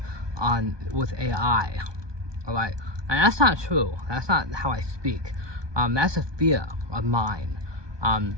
with AI. All right, and that's not true. That's not how I speak. That's a fear of mine.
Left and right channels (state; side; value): late; left; 1.2 ms